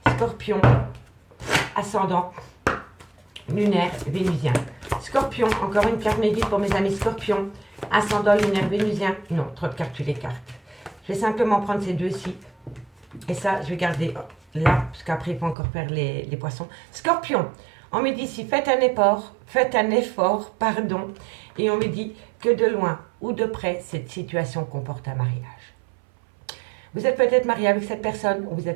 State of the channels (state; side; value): drops out; left; at 15.6 s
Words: Scorpion, ascendant, lunaire, vénusien. Scorpion, encore une carte médite pour mes amis scorpions, ascendant, lunaire, vénusien. Non, trop de cartes, tu les cartes. Je vais simplement prendre ces deux-ci. Et ça, je vais garder là, parce qu'après, il faut encore faire les poissons. Scorpion. On me dit ici, faites un effort, et on me dit que de loin ou de près, cette situation comporte un mariage. Vous êtes peut-être marié avec cette personne, ou vous